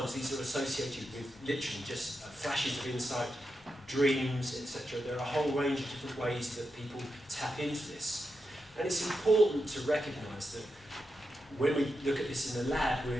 these are associated with literally just flashes of insight, dreams, etc. There are a whole range of different ways that people tap into this. And it's important to recognise that when we look at this in the lab,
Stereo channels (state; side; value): normal; both; correlation 0.87